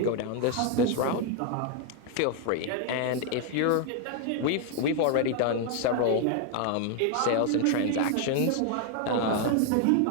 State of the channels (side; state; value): both; different; correlation 0.00